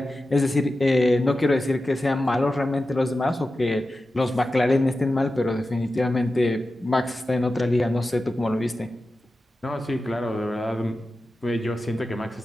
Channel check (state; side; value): normal; both; correlation 0.93